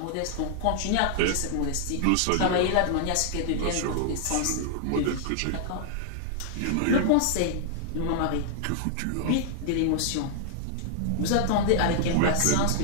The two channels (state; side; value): different; both; correlation -0.01